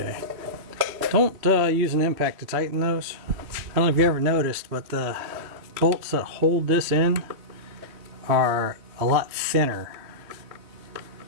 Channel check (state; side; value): late; left; 3.2 ms